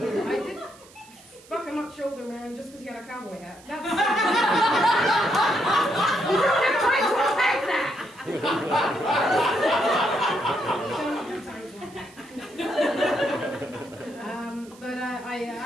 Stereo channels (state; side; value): noise; right; hiss, 24 dB below the sound